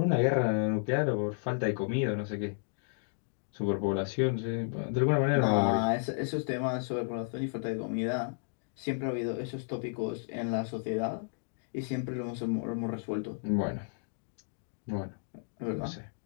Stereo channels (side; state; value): right; silent; digital silence